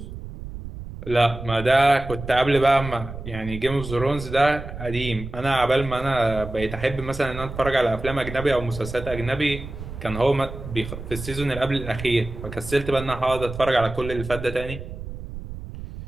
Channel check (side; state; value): right; noise; rumble, 10 dB below the sound